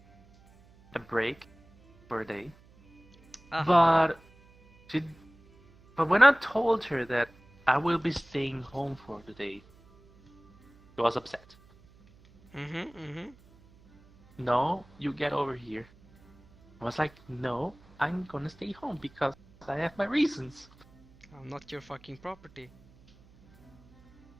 a break for a day, Uh-huh. but she. But when I told her that I will be staying home for the day, she was upset. Mm-hmm. Mm-hmm. No, you get over here. I was like, no, I'm gonna stay home because I have my reasons. I'm not your fucking property.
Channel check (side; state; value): right; noise; hum, 27 dB below the sound